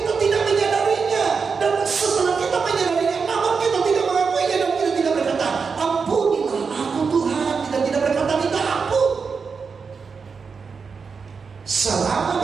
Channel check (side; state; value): left; quieter; 5.4 dB